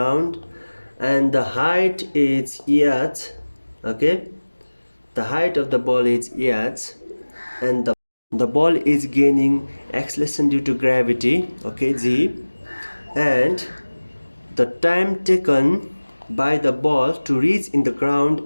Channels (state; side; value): inverted; both; correlation -1.00